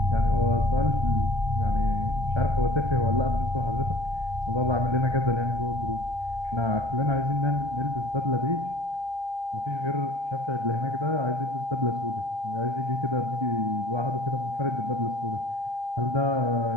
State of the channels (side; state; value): left; late; 1.3 ms